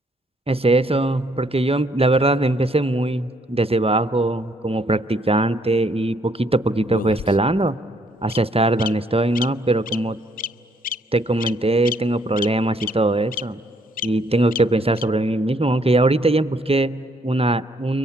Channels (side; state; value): both; normal; correlation 0.67